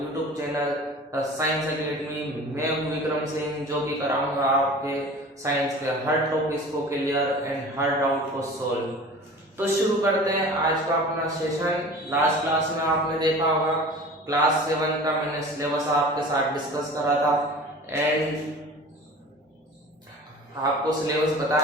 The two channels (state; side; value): normal; both; correlation 0.40